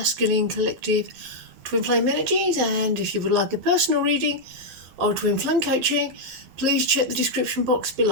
Collective Twin Flame Energies, and if you would like a personal reading or Twin Flame coaching, please check the description box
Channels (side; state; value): left; late; 12 ms